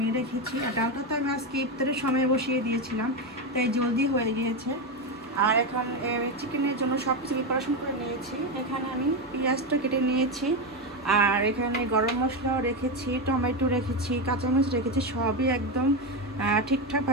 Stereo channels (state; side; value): normal; both; correlation 0.11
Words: রেখেছি। আর ডালটা তো আমি আজকে ইফতারের সময় বসিয়ে দিয়েছিলাম, তাই জলদি হয়ে গিয়েছে। আর এখন চিকেনের জন্য সব কিছু প্রিপারেশন করে নিয়েছি। এখানে আমি পেঁয়াজটা কেটে নিয়েছি, আর এখানে গরম মশলাও রেখেছি, টমেটো রেখেছি, কাঁচামরিচ রেখেছি, সবই একদম